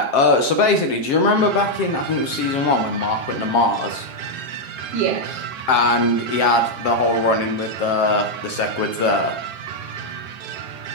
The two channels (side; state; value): right; late; 7.5 ms